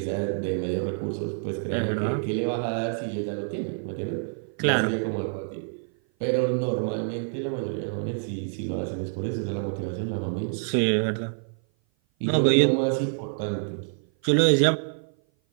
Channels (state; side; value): silent; left; 56 dB below the other